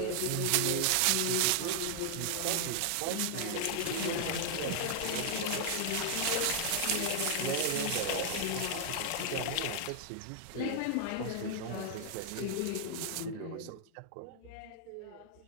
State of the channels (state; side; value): different; both; correlation -0.01